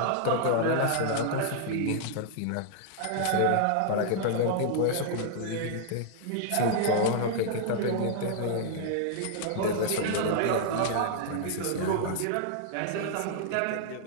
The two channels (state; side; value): different; both; correlation 0.00